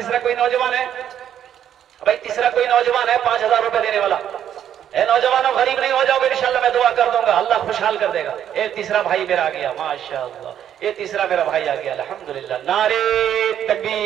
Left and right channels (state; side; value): quieter; left; 10.0 dB